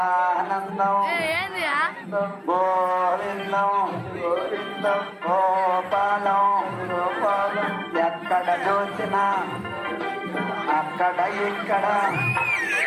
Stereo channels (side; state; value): both; identical; correlation 1.00